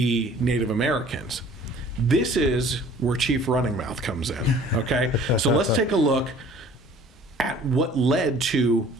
Native Americans. This is where Chief Running Mouth comes in, okay? So let's take a look at what led to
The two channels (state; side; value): normal; both; correlation 0.51